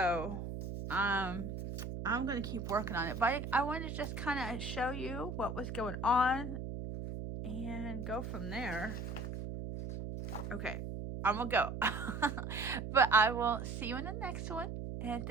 I'm gonna keep working on it. But I wanted to just kind of show you what was going on and go from there. Okay, I'm gonna go. But I will see you in the next one. And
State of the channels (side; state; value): right; noise; hum, 6 dB below the sound